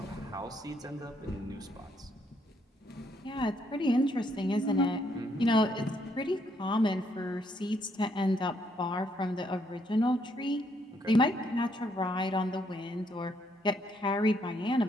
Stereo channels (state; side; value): normal; both; correlation 0.72